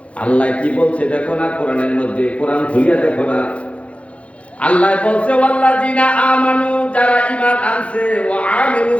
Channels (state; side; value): late; right; 0.062 ms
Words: আল্লাহ কি বলছে দেখো না কোরআনের মধ্যে, কোরআন খুলিয়া দেখো না। আল্লাহ বলছে ওয়াল্লাযিনা আমানু, যারা ঈমান আনছে, ওয়া